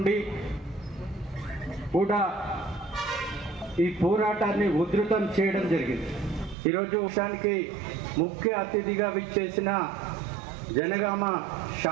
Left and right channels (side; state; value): left; drops out; at 6.6 s